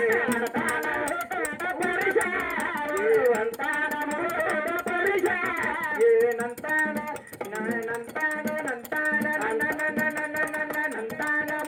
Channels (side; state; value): both; identical; correlation 1.00